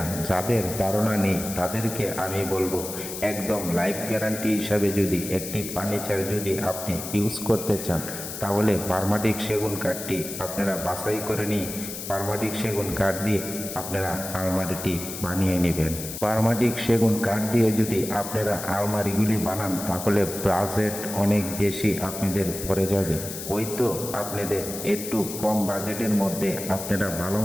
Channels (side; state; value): left; noise; hiss, 8 dB below the sound